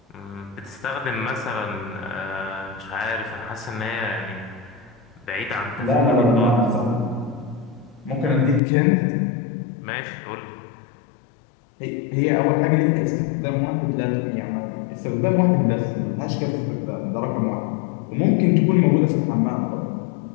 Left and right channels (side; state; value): right; drops out; at 8.6 s